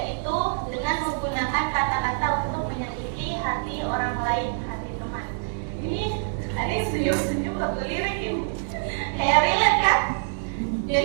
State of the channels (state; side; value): silent; left; digital silence